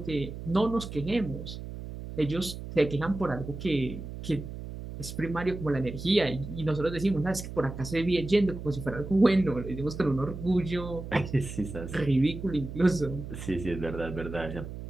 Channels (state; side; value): noise; right; hum, 9 dB below the sound